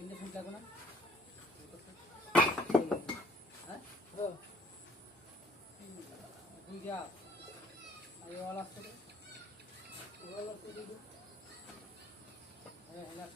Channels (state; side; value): normal; both; correlation 0.59